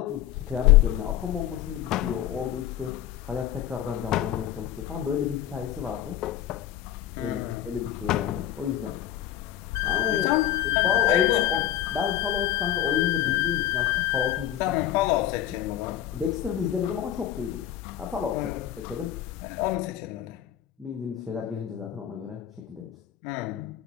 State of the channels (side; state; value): right; quieter; 11.8 dB